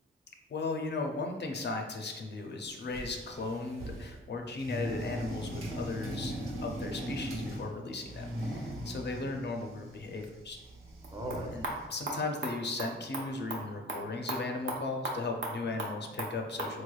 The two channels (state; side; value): normal; both; correlation 0.43